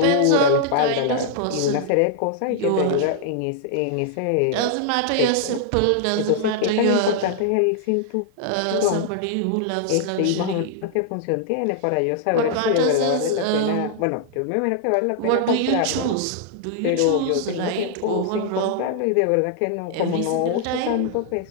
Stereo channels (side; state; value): both; different; correlation -0.01